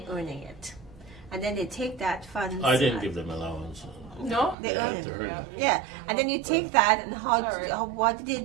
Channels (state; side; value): drops out; left; at 4.5 s